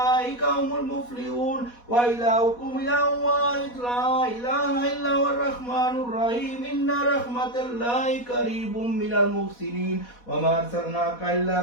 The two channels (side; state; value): right; late; 4.1 ms